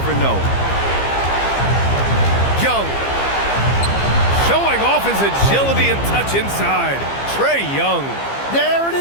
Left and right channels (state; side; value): late; right; 15 ms